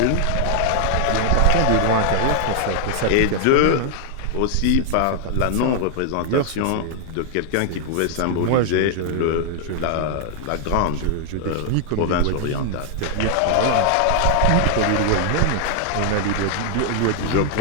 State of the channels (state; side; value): different; both; correlation 0.00